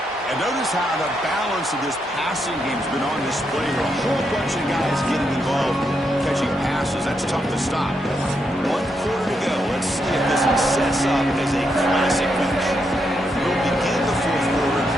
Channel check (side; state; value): both; normal; correlation 0.81